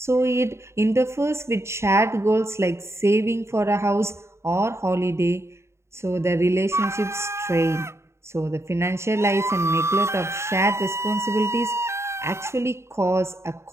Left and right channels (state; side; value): late; left; 0.13 ms